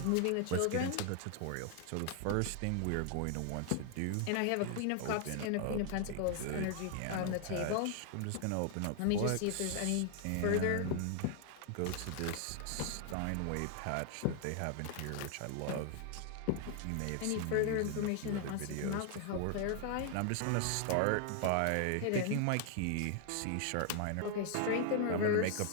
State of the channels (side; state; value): both; different; correlation 0.00